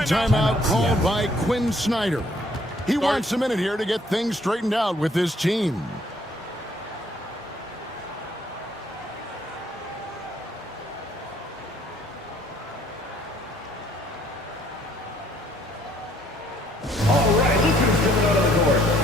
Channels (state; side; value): normal; both; correlation 0.63